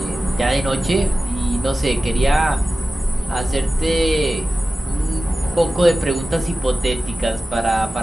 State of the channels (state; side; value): normal; both; correlation 0.95